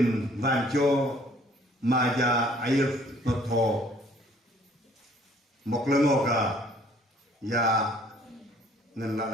banco maja air noto moklengoka ya ngan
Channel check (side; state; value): both; normal; correlation 0.58